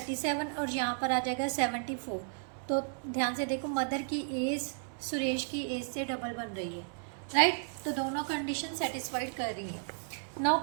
और यहाँ पर आ जाएगा 74। तो ध्यान से देखो, मदर की एज सुरेश की एज से डबल बन रही है, राइट। तो दोनों कंडीशन सेटिस्फाइड कर रही है। नाउ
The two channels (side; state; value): left; silent; 55 dB below the other